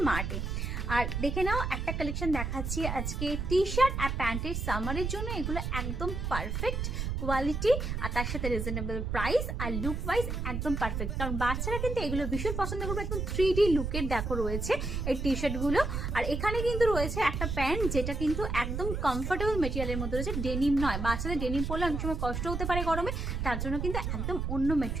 মার্টে। আর দেখে নাও, একটা কালেকশন দেখাচ্ছি আজকে টি শার্ট আর প্যান্টের সামারের জন্য। এগুলো একদম পারফেক্ট কোয়ালিটি আর তার সাথে রিজনেবল প্রাইস আর লুক ওয়াইজ একদম পারফেক্ট। কারণ বাচ্চারা কিন্তু এগুলো ভীষণ পছন্দ করবে। একদম 3D লুকের দেখো রয়েছে এই টি শার্টগুলো। আর এখানে কিন্তু রয়েছে একটা প্যান্ট যেটা কিন্তু একদম কমফোর্টেবল মেটেরিয়ালের মধ্যে রয়েছে, ডেনিম নয়। বাচ্চাদের ডেনিম পরলে অনেক সময় কষ্ট হতে পারে গরমে, তার জন্য কিন্তু একদম অন্য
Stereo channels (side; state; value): right; noise; rumble, 2 dB below the sound